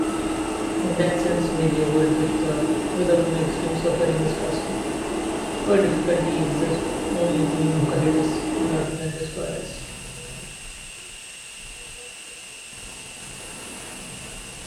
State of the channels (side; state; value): both; identical; correlation 1.00